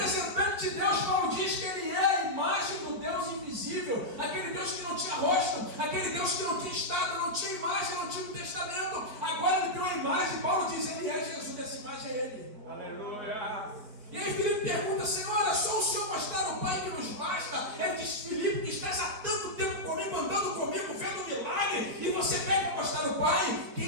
de Deus, Paulo diz que ele é a imagem do Deus invisível. Aquele Deus que não tinha rosto, aquele Deus que não tinha estado, não tinha imagem, não tinha um testamento. Agora ele tem uma imagem. Paulo diz: ele é Jesus, essa imagem é ele. Aleluia. E aí Filipe pergunta: Senhor, é só o Senhor mostrar o Pai que nos basta? Ele diz: Filipe, que estás há tanto tempo comigo, andando comigo, vendo o milagre, e você pede para mostrar o Pai?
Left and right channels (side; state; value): left; late; 4.5 ms